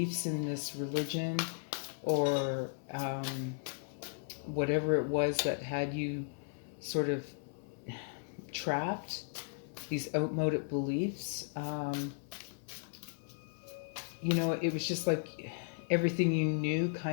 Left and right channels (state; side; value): silent; right; 54 dB below the other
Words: in this religion, or whatever it was that had you sort of trapped, these outmoded beliefs, it was just like everything you knew